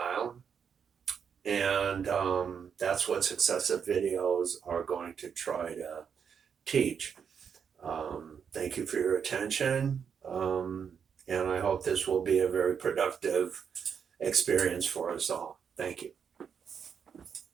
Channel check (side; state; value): left; quieter; 7.1 dB